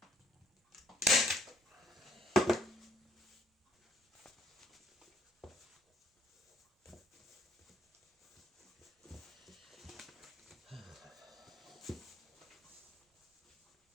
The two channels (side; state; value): both; normal; correlation 0.66